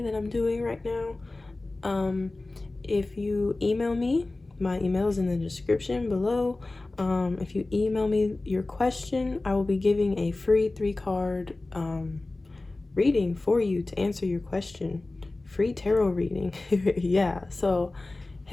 that I'm doing right now. If you email me, my email is in the description below. If you email me your question, I will be giving a free 3-card reading for you to answer your question. Free tarot reading. Yeah, so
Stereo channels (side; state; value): right; quieter; 3.0 dB